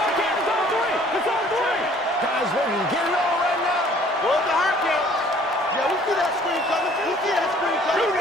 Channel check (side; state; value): both; normal; correlation 0.56